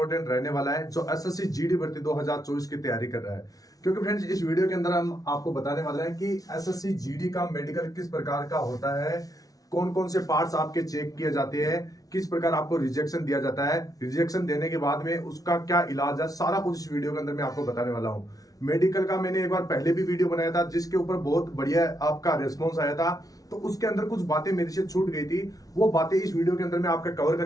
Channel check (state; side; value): late; right; 0.18 ms